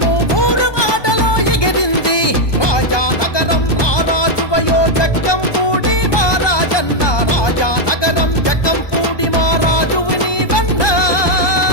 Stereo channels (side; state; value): right; late; 1.2 ms